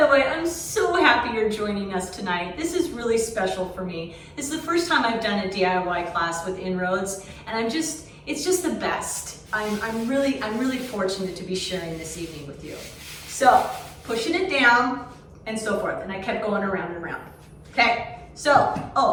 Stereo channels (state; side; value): identical; both; correlation 1.00